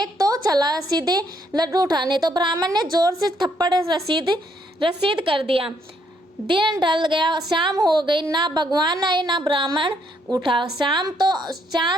तो चला सीधे लड्डू उठाने, तो ब्राह्मण ने जोर से थप्पड़ रसीद कर दिया। दिन ढल गया, शाम हो गई, ना भगवान आए ना ब्राह्मण उठा।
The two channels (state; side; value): normal; both; correlation 0.72